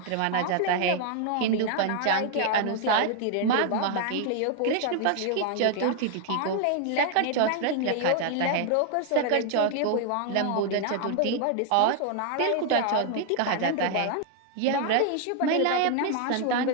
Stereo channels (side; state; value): both; different; correlation 0.00